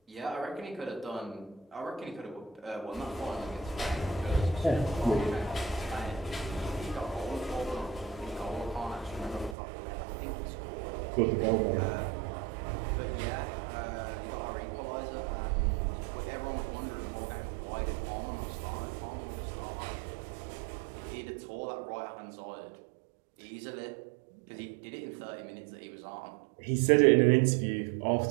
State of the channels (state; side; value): drops out; left; at 9.6 s